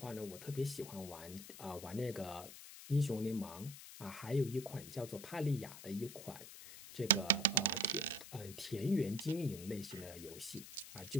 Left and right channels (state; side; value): noise; left; hiss, 13 dB below the sound